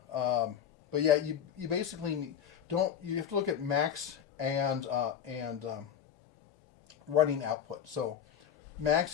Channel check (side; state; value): right; quieter; 8.7 dB